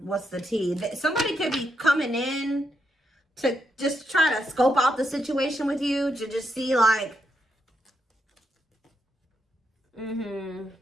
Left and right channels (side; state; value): both; normal; correlation 0.81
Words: what's the T? Somebody could be coming in to just try to scope out the situation with you, to just see like,